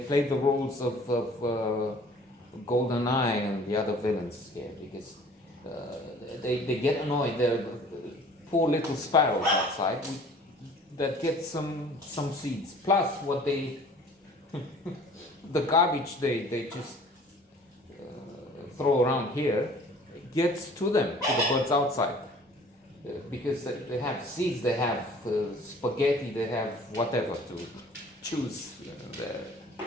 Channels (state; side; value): normal; both; correlation 0.50